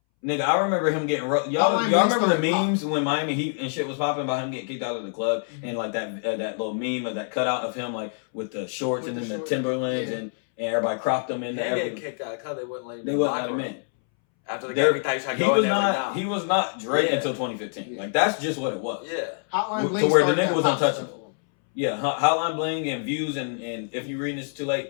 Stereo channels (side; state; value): right; silent; 61 dB below the other